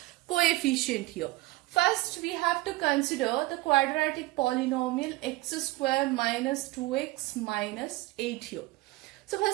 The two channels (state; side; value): quieter; left; 19.8 dB